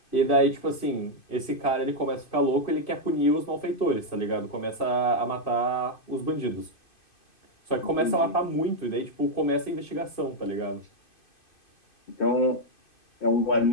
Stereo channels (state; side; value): late; right; 2.5 ms